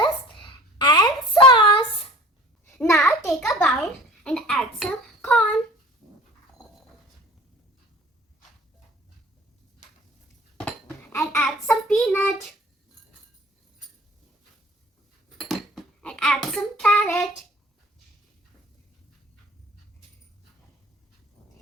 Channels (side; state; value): both; normal; correlation 0.46